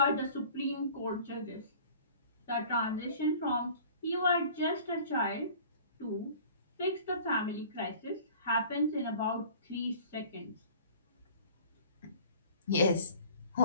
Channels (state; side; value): inverted; both; correlation -0.47